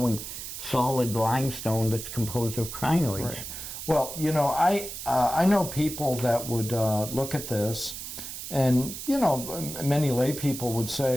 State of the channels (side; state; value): right; noise; hiss, 8 dB below the sound